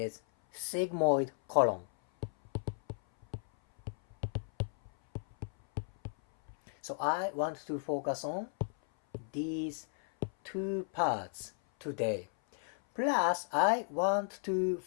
sigmoid colon. So I want to focus on these two parts today. Plus, I want to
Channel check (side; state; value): right; silent; 55 dB below the other